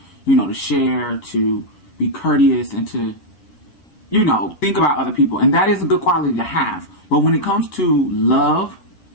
to share, to be courteous, and to, think about other people. And that is a good quality to have. But when it comes to love,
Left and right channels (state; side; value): late; right; 11 ms